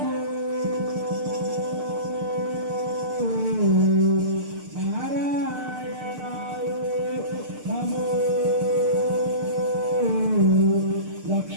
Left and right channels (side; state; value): left; late; 6.6 ms